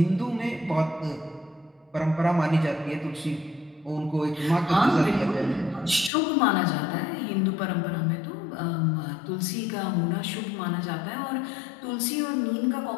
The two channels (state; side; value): drops out; right; at 6.1 s